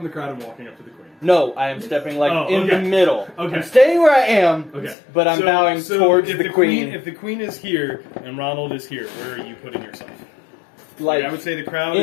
the crowd and walking up to the queen. No, I am stepping Oh, in okay. the middle. Okay. I'm staying where I am, Okay. but I'm bowing towards if the queen. If the queen is here and Ronald is here, where are you putting yourself? Like, I would say the crowd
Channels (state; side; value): drops out; right; at 5.0 s